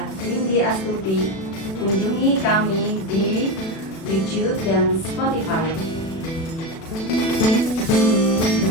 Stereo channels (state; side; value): late; right; 37 ms